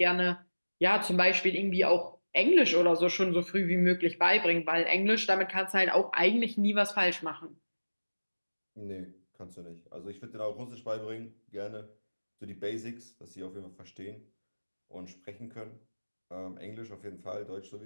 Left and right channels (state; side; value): inverted; both; correlation -1.00